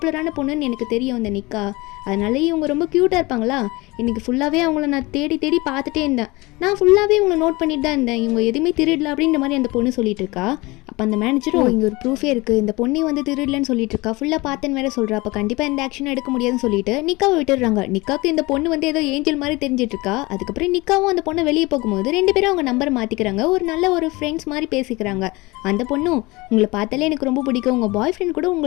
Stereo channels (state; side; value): quieter; right; 22.9 dB